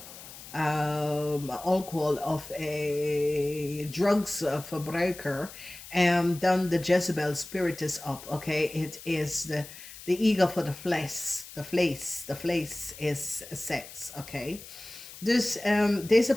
drugs verbruiker, and dan de Jezebel spirit is up. Okay, it is the ego for the flesh. The flesh is sex. Okay, dus deze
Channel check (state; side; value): noise; left; hiss, 15 dB below the sound